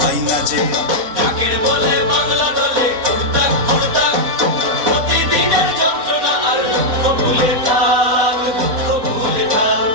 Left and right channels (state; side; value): late; left; 4.3 ms